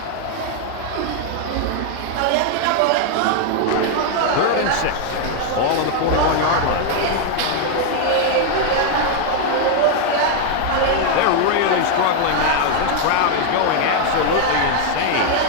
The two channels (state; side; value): different; both; correlation 0.00